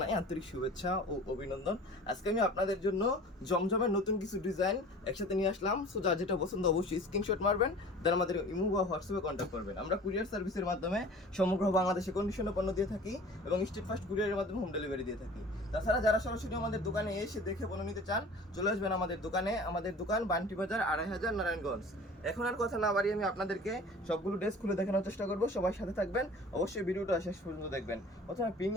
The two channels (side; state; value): both; normal; correlation 0.43